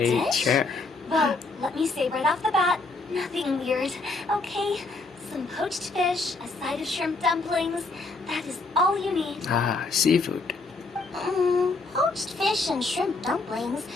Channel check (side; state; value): right; quieter; 3.6 dB